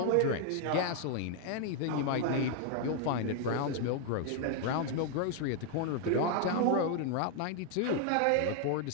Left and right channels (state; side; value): different; both; correlation 0.00